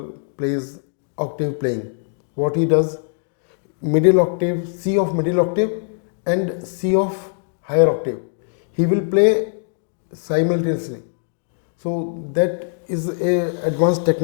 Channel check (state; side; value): silent; right; digital silence